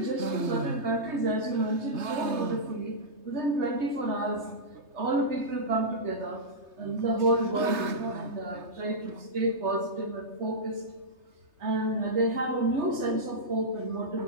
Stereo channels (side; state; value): left; late; 3.3 ms